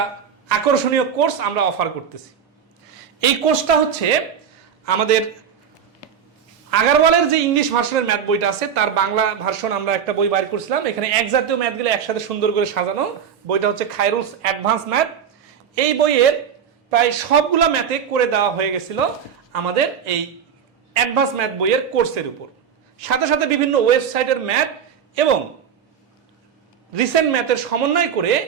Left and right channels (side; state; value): left; quieter; 7.8 dB